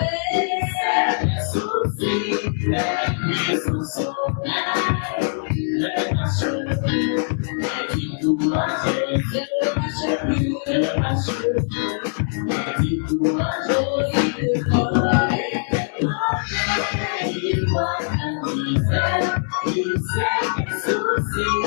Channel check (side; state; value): right; silent; 59 dB below the other